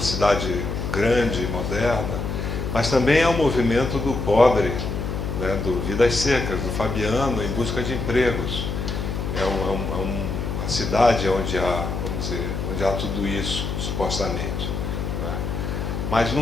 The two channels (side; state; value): left; noise; hum, 3 dB below the sound